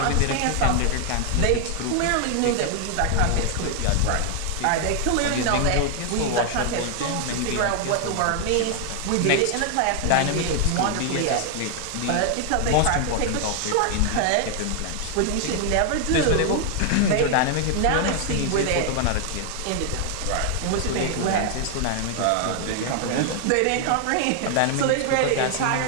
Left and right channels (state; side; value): different; both; correlation 0.00